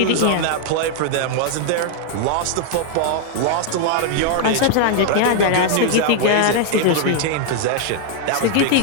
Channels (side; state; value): both; different; correlation 0.00